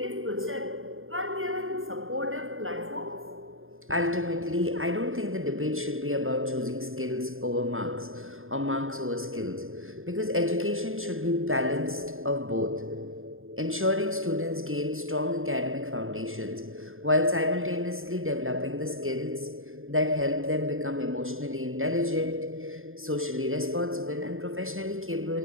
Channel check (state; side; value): late; left; 0.60 ms